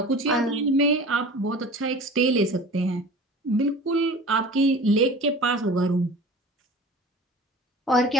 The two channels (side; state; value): both; normal; correlation 0.40